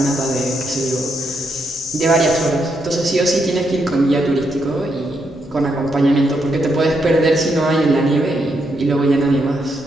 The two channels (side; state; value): both; normal; correlation 0.79